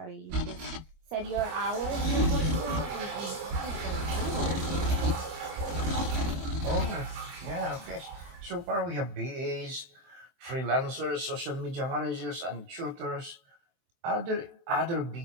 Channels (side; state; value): left; late; 23 ms